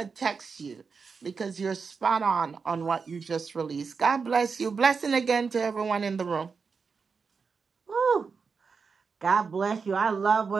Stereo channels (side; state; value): left; quieter; 5.2 dB